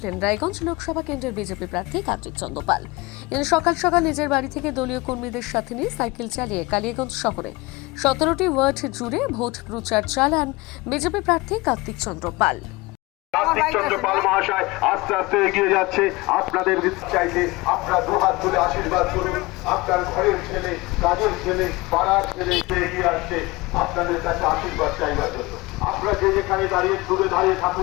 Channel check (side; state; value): right; quieter; 22.3 dB